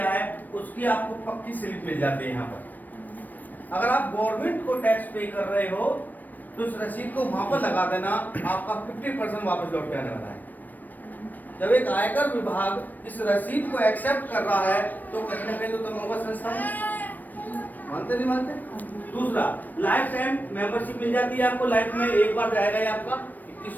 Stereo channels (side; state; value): right; late; 0.087 ms